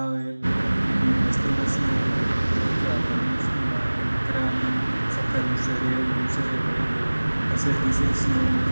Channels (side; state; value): both; inverted; correlation -1.00